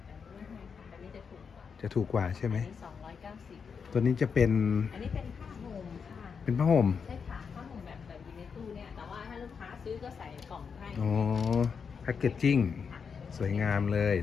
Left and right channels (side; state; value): right; quieter; 6.1 dB